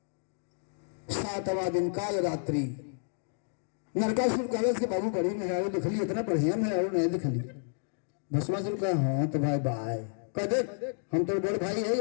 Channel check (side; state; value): right; silent; digital silence